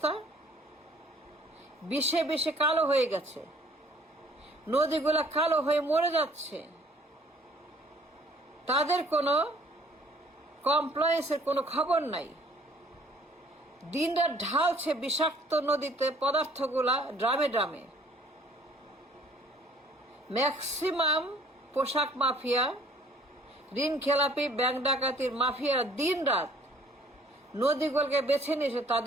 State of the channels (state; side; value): normal; both; correlation 0.57